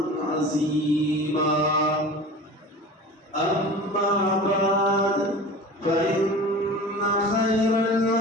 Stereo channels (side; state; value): both; normal; correlation 0.36